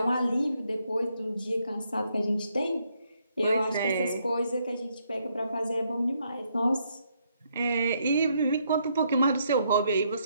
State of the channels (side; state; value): both; inverted; correlation -0.74